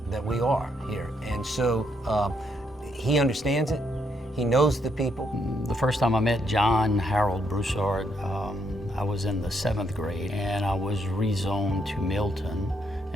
that we are here. And so he understands it. He knows the people. The first time I met John Harold Broussard, I was in the 7th grade, and I was rezoned to Milton.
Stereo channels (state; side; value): normal; both; correlation 0.75